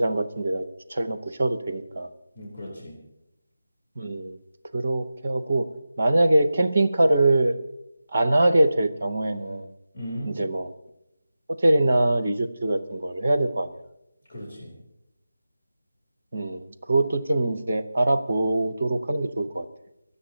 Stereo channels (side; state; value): both; inverted; correlation -0.94